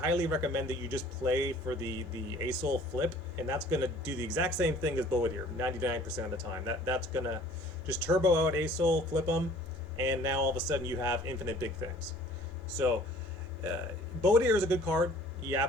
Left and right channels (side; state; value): both; normal; correlation 0.52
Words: recommend that you just play for the Azir flip, and that's going to do the exact same thing as Boadir 99% of the time. That's going to just turbo out Azir, flip them, and now all of a sudden you have infinite big things. So Boadir is a good card. He